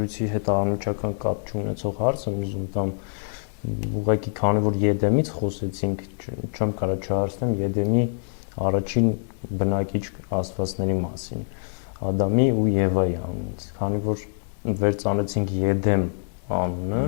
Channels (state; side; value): silent; right; digital silence